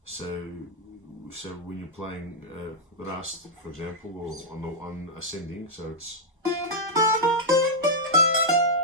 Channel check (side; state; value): both; normal; correlation -0.06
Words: so when you're playing Rast, for example, or on ascending, so it's,